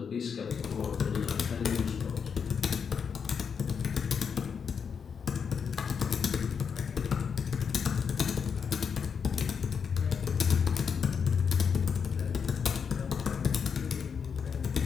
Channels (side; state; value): right; quieter; 6.5 dB